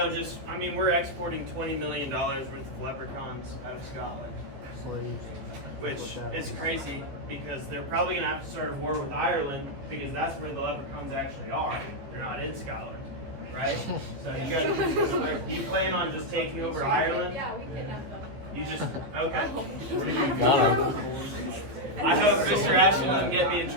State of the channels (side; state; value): left; late; 15 ms